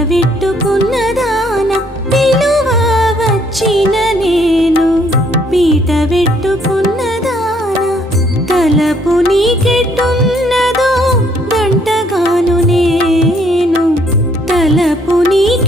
వెట్టుకున్నదాన పిలువ వచ్చిన నేను పీట వెట్టుకున్నదాన తలపు నీకెట్టున్నదో గంటగాను నేను తలపు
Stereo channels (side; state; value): both; normal; correlation 0.66